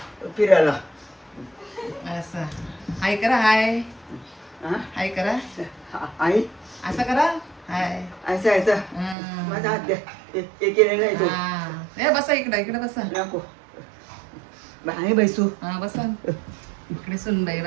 फिरायला. असं हाय करा. हाय हाय करा. आई असं करा. हाय. असं असं माझा हात द्या. हे केले नाही तो. ए बसा इकडे. इकडे बसा. नको बाई बैसू. हा बसा. इकडे सुनबाई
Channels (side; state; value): left; drops out; at 9.2 s